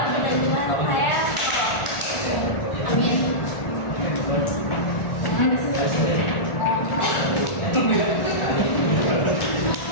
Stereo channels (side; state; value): right; late; 1.4 ms